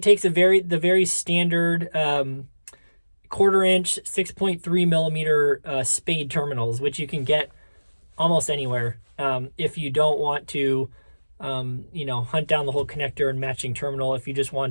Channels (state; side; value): inverted; both; correlation -1.00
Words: takes the very standard 1/4 inch 6.3 millimeter spade terminals, which you can get almost anywhere if you don't want to you know, hunt down the whole connector and matching terminal. If you just